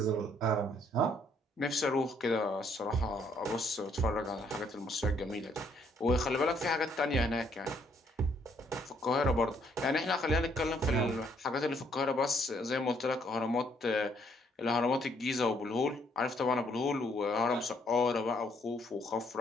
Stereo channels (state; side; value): normal; both; correlation 0.68